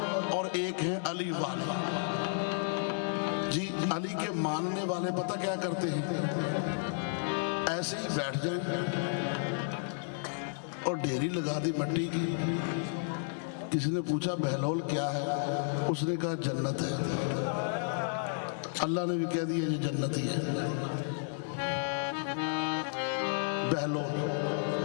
और एक है अली वाले जी। अली के मानने वाले पता क्या करते हैं, ऐसे ही बैठ जाए और ढेरी लगा दी मट्टी की। किसी ने पूछा बहलोल क्या है, उसने कहा जन्नत है। अल्लाह ने भी कह दिया ये जन्नत ही है। बहलोल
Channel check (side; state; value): right; silent; digital silence